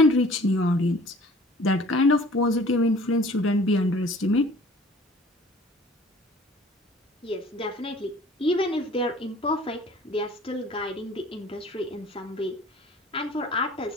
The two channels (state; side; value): normal; both; correlation 0.50